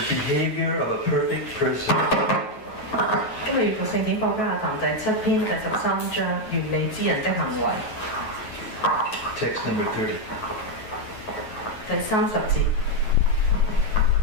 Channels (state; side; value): late; right; 9.3 ms